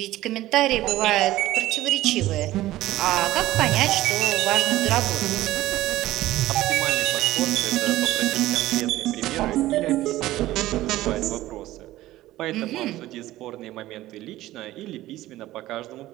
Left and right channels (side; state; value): left; quieter; 15.8 dB